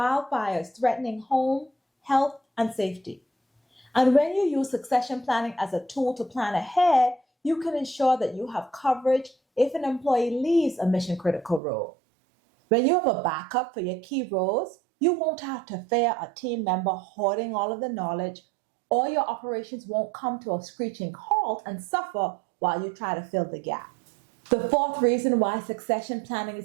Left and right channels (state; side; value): drops out; left; at 11.6 s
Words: threatening home, health, and safety. And when you use succession planning as a tool to plan ahead, you can ensure that you have coverage if an employee leaves a mission critical role. When you have a backup for your key roles, you won't have to fear a team member hoarding all of the knowledge, or your operations won't come to a screeching halt and suffer while you try to fill the gap. The fourth reason why succession planning